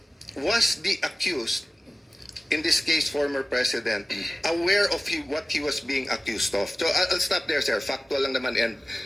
was the accused, in this case former president, aware of what he was being accused of? So I'll stop there, sir. Factual lang naman, and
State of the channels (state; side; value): normal; both; correlation 0.97